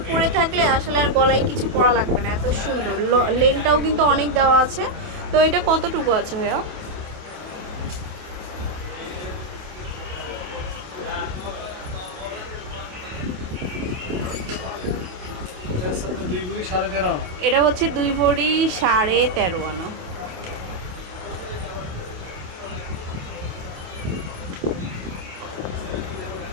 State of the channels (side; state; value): left; late; 27 ms